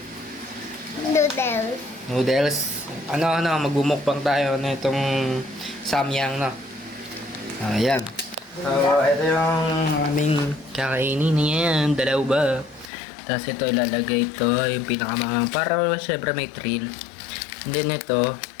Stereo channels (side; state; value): right; drops out; at 12.9 s